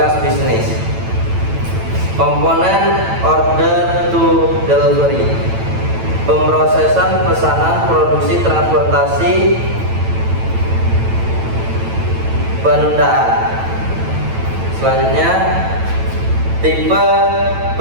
bisnis. Komponen order to delivery, pemrosesan pesanan, produksi, transportasi, penundaan. Selanjutnya, tipe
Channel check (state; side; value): late; left; 9.0 ms